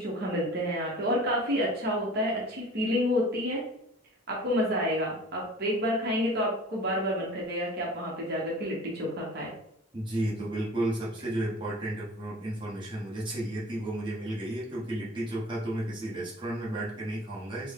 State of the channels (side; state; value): both; normal; correlation 0.43